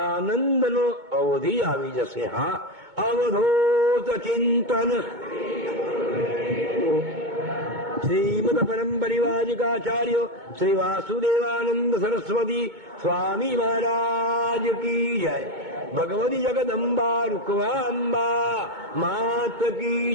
આનંદનો અવધિ આવી જશે. હા, અવધૂત ચિંતન શ્રીમદ પરમ પરિવાજિકાચાર્ય શ્રી વાસુદેવાનંદ સરસ્વતી સ્વામી મહારાજ કી જય. ભગવતી જગદંબા રૂકવાંબા માત કી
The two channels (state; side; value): late; left; 2.2 ms